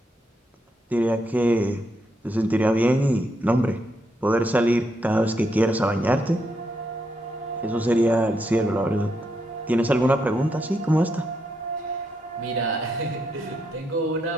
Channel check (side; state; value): both; normal; correlation 0.79